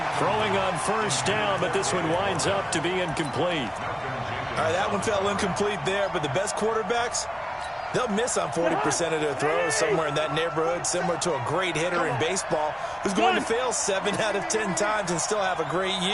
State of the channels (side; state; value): both; identical; correlation 1.00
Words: Throwing on 1st down, but this one winds up to be incomplete. All right, that one fell incomplete there, but the best quarterbacks, they'll miss on 40% of their throws, somewhere in that neighborhood, similar to a great hitter in baseball who's going to fail 7 out of 10 times and still have a great